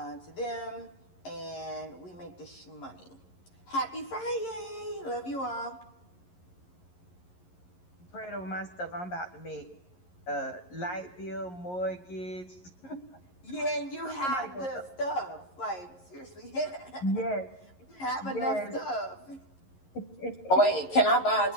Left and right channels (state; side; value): late; right; 11 ms